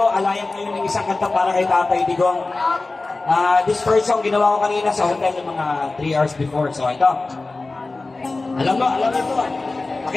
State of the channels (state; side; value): quieter; right; 3.4 dB